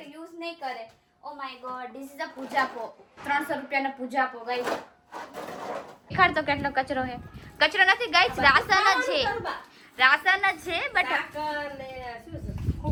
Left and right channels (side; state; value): both; identical; correlation 1.00